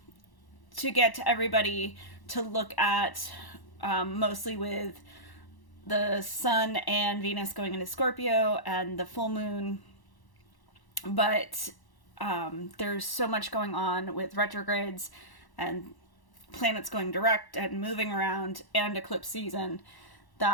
to get to everybody to look at mostly with the Sun and Venus going into Scorpio and the full moon. But there's so much going on with retrogrades and planets going direct and moving around and eclipse season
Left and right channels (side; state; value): right; late; 1.1 ms